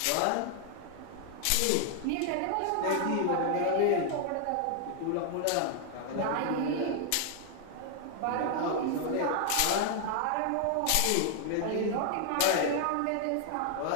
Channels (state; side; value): different; both; correlation 0.00